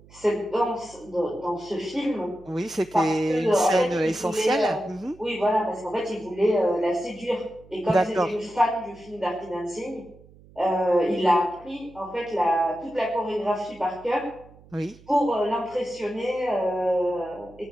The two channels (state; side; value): noise; right; hum, 24 dB below the sound